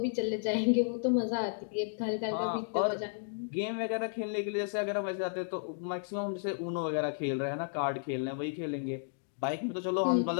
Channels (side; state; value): right; silent; digital silence